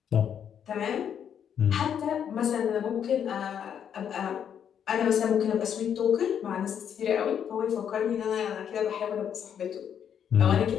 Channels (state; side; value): quieter; right; 8.5 dB